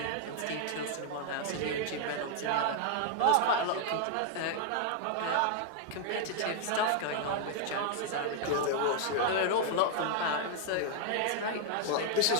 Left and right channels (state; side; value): different; both; correlation 0.00